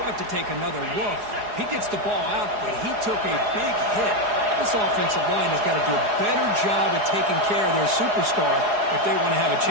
have to take another look. He gets the ball out, but he took a big hit. This offensive line has got to do a better job of taking care of their superstar if they want to have a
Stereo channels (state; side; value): late; left; 4.8 ms